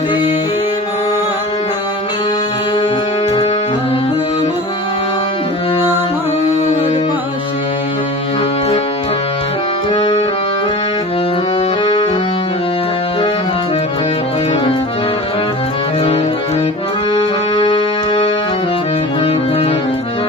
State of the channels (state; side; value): normal; both; correlation 0.36